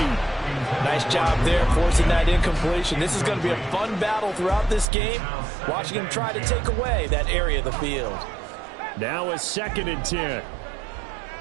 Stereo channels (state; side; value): drops out; left; at 4.9 s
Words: Nice job there forcing that incompletion. This is going to be a fun battle throughout this game, watching him try to take away that area of the field. Now a 2nd and 10.